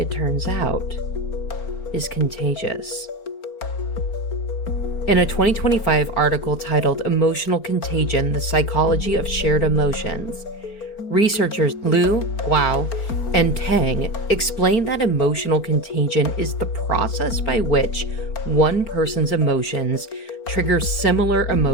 turns out, is contagious. In a 2025 article titled Emotional Contagion, The Psychology of Shared Emotions, researchers Liu, Guo, and Tang explain that emotional contagion is the process by which one person's emotions trigger similar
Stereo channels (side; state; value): right; late; 4.4 ms